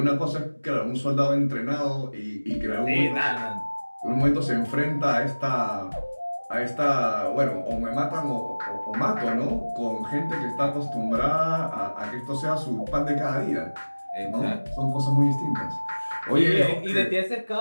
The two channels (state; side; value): inverted; both; correlation -1.00